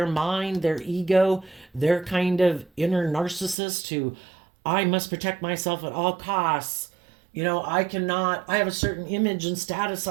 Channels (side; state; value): left; drops out; at 3.6 s